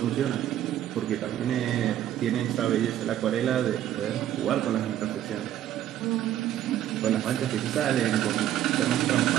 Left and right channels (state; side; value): quieter; left; 11.8 dB